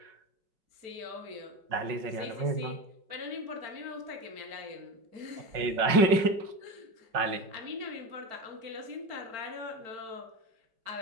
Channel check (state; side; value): late; left; 5.4 ms